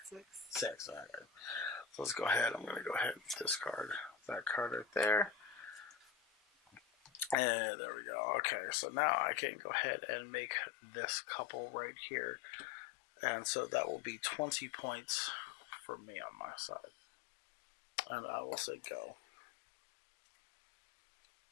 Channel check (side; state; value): right; drops out; at 7.4 s